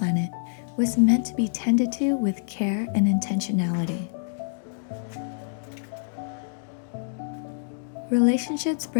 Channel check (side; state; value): right; silent; 61 dB below the other